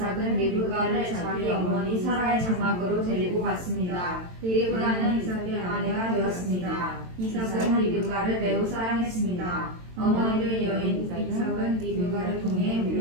리브가를 자기 어머니 사라의 장막으로 데리고 갔습니다. 리브가는 이삭의 아내가 되었습니다. 이삭은 리브가를 매우 사랑했습니다. 어머니를 여인 이삭은 리브가를 통해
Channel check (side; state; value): left; late; 22 ms